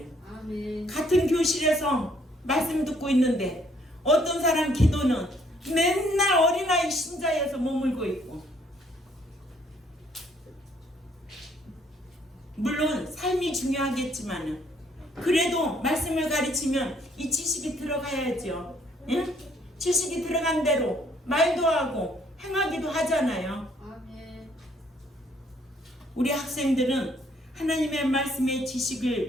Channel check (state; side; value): normal; both; correlation 0.65